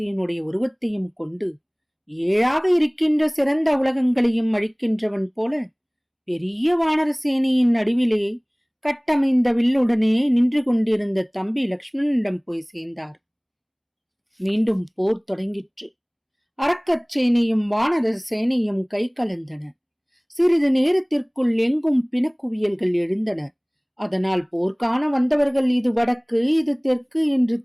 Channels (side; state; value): both; identical; correlation 1.00